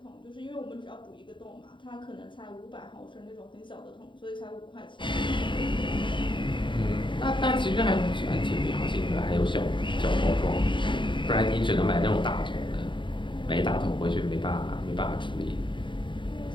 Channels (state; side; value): late; right; 0.23 ms